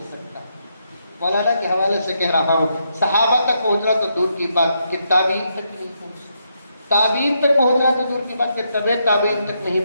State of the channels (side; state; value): both; inverted; correlation -0.79